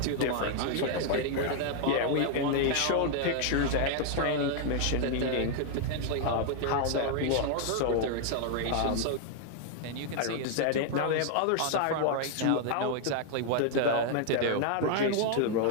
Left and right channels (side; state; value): both; different; correlation 0.00